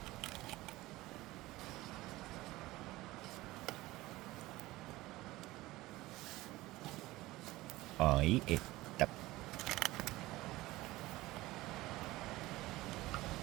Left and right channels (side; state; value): left; quieter; 18.6 dB